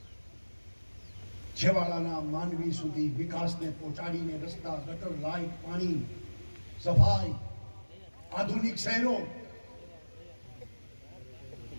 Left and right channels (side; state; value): both; inverted; correlation -1.00